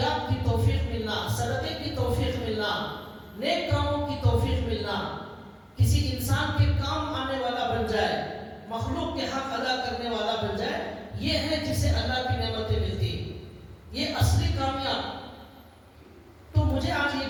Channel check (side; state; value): both; identical; correlation 1.00